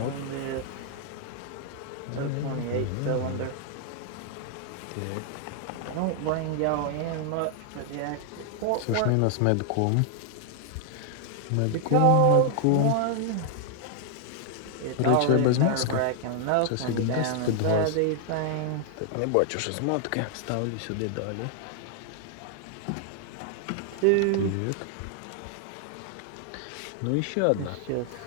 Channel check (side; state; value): both; different; correlation 0.00